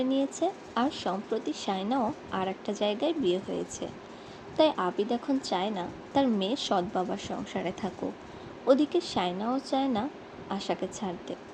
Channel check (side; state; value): both; identical; correlation 1.00